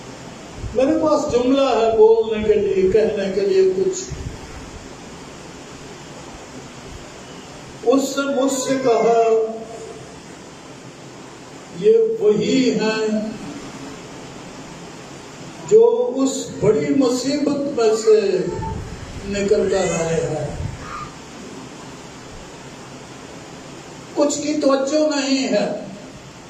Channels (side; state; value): both; identical; correlation 1.00